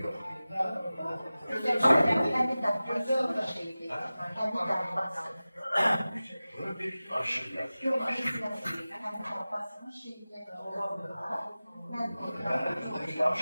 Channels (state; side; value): inverted; both; correlation -0.97